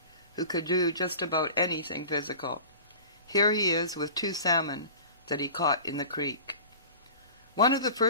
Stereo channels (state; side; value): inverted; both; correlation -0.40